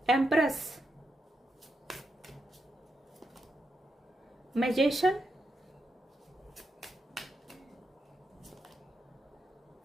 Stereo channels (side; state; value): both; normal; correlation 0.84